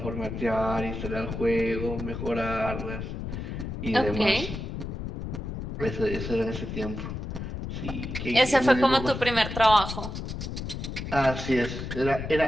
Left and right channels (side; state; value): left; noise; rumble, 6 dB below the sound